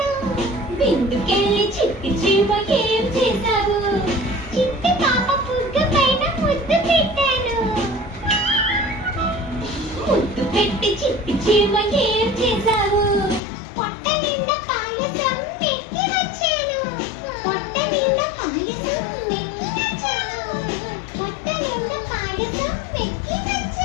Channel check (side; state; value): right; drops out; at 13.4 s